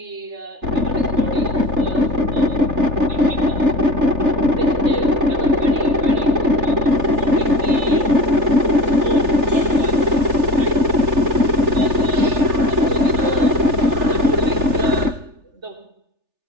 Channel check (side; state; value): left; late; 3.4 ms